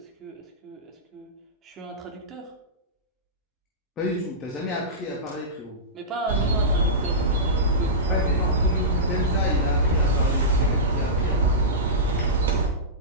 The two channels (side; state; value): both; normal; correlation -0.15